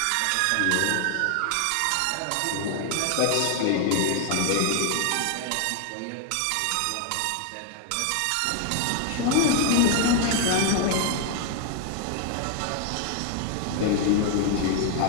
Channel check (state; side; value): different; both; correlation 0.00